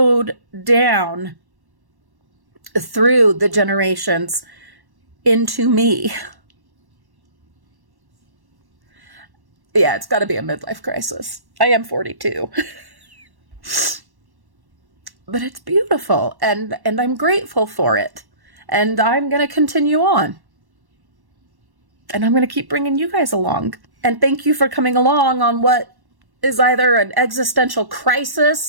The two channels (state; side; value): late; left; 1.1 ms